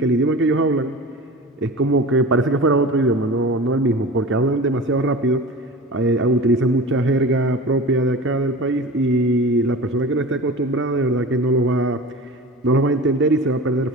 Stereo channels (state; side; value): normal; both; correlation 0.34